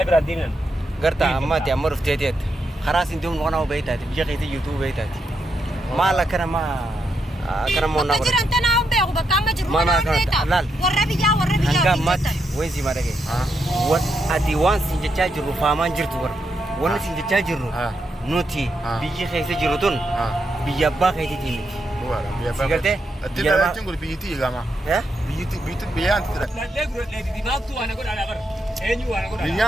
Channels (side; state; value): both; normal; correlation 0.81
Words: ردينن قرتا أما تأمر في تيت خلاص انتم وانا وبيتات بيجي في يوتيوب بيتات ما لا كنا ما كنا ما نقول تجري أنت ناوم بيعو بكام مجرو ما ما كنا لال وربيا أنك مات وين سي مارك وان أدي وان سنجتاج جرو فامان جرتور وان سنجتاج جرو نوتي بيجي خيسة جرتون بيجابا خيسة تيمي سيكرتة أتلا لا تقول بيتي يا جماعة بيتي بيان ترى لا تقول لا دماغ تو أنا أقول على غر أنيو أنا أقول